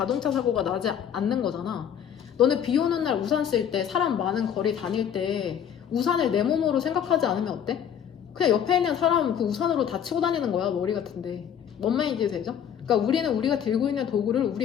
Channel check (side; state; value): right; quieter; 8.8 dB